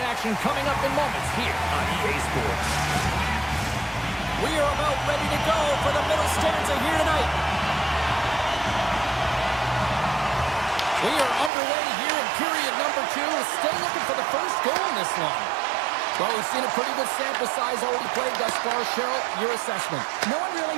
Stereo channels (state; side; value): drops out; left; at 11.5 s